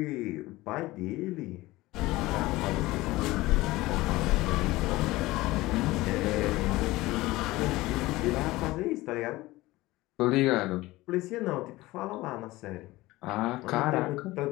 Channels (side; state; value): right; quieter; 19.1 dB